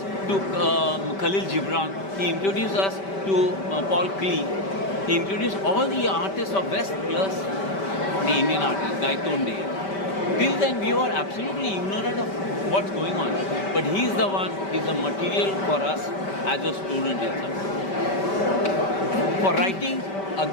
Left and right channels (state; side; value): late; right; 5.2 ms